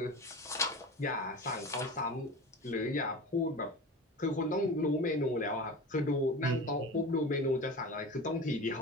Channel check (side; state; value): both; normal; correlation 0.31